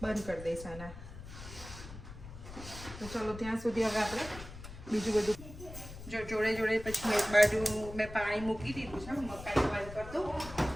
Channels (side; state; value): left; noise; rumble, 13 dB below the sound